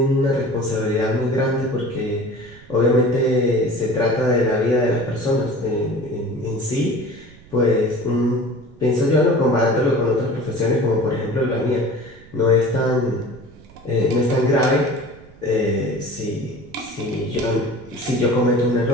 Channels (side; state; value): right; noise; rumble, 23 dB below the sound